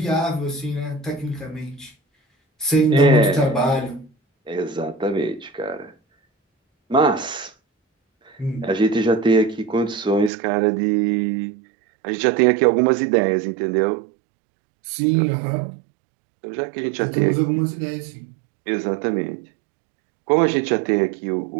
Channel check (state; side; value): drops out; left; at 10.3 s